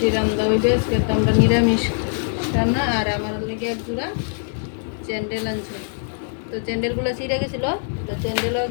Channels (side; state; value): right; silent; digital silence